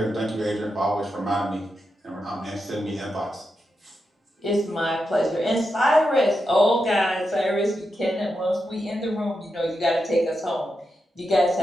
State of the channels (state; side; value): normal; both; correlation 0.87